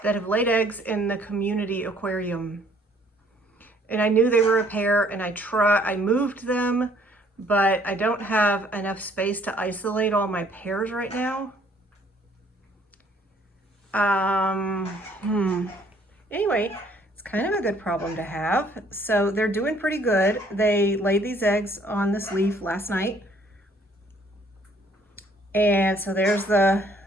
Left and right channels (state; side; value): normal; both; correlation 0.62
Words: that have laid eggs in the community aquarium. And I knew they were a pair, and I moved them, but I don't have enough space to isolate all my pairs right now. Anyway, it's kind of a good problem to have. So they're doing pretty good. They laid these eggs on this leaf last night. And so there's the